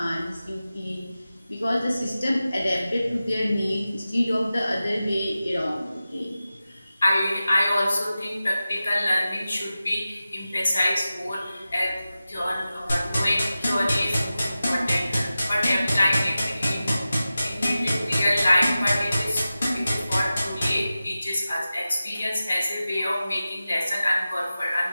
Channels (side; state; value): both; inverted; correlation -0.94